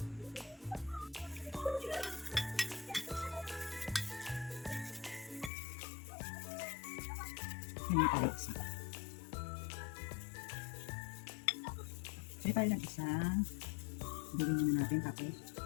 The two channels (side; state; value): right; drops out; at 5.5 s